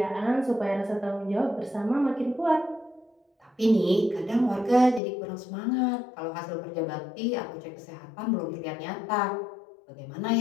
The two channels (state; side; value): drops out; right; at 5.0 s